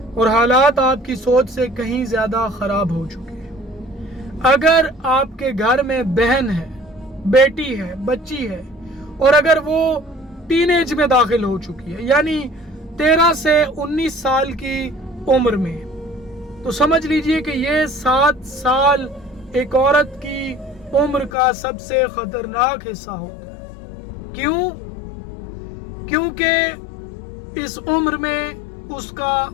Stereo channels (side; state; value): right; drops out; at 21.3 s